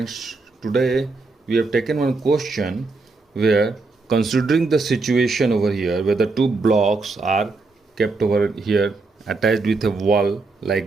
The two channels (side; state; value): left; quieter; 3.7 dB